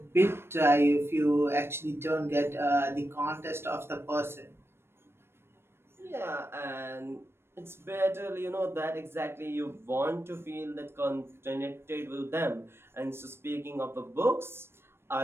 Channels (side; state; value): left; late; 0.12 ms